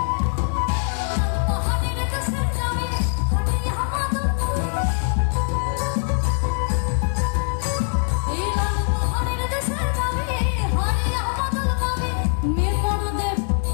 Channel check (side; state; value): right; silent; 63 dB below the other